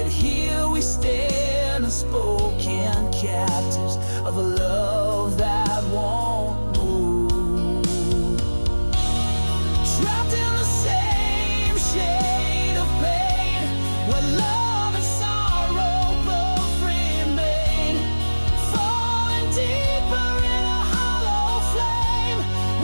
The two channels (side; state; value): both; inverted; correlation -1.00